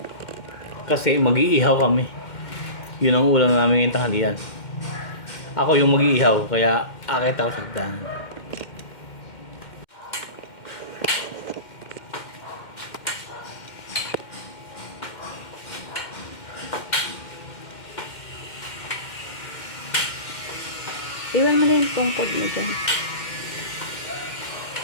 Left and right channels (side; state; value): right; late; 2.1 ms